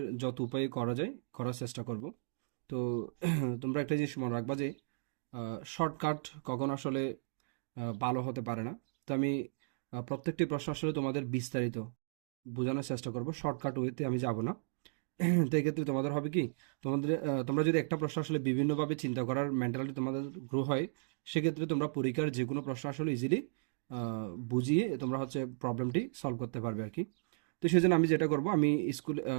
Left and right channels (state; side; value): silent; left; digital silence